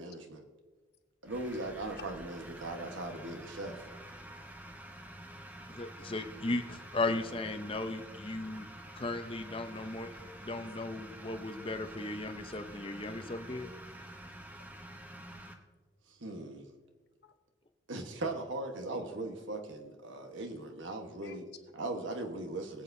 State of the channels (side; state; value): both; normal; correlation 0.35